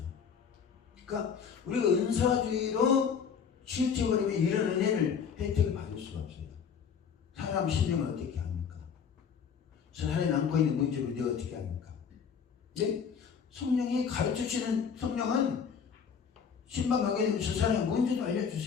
그러니까 우리가 은사주의로 치우쳐버리면 이런 은혜를 혜택을 받을 수가 없어요. 사람 심령을 어떻게 합니까? 사람이 안고 있는 문제를 내가 어떻게 합니까? 네? 성령이 가르쳐 주시는 성령은 신방하게 되면 저 사람의 문제도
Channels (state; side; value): quieter; right; 6.8 dB